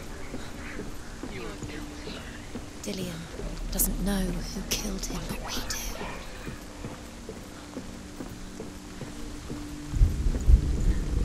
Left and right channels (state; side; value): identical; both; correlation 1.00